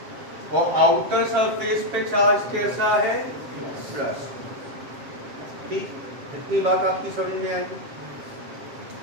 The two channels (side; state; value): left; late; 7.6 ms